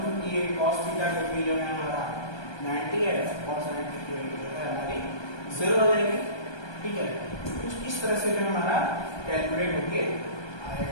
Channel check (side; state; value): right; late; 1.2 ms